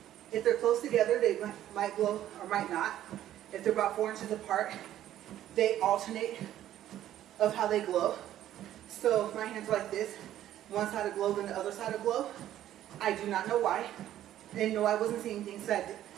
if they're close together, they might glow or might not. If they're about 4 inches apart, they alternate of how they glow. So if my hands are like this, one side will glow, then the other side will glow. I do not know why. And no, I wasn't seeing things, so I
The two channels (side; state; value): left; quieter; 12.3 dB